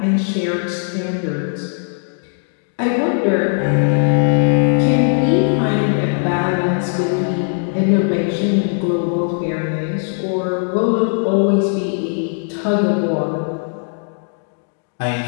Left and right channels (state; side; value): silent; right; 61 dB below the other